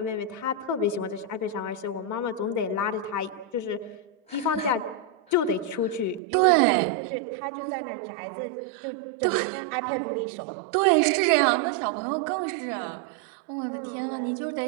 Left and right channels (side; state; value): left; drops out; at 6.2 s